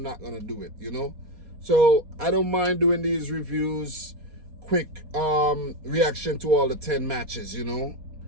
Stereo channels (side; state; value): left; late; 4.2 ms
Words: not going to do it, So I don't mind doing these reviews, quick reaction to all the 10 matches,